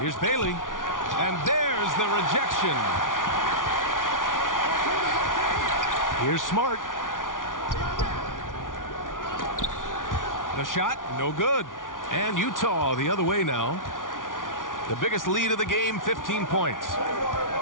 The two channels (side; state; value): right; late; 0.88 ms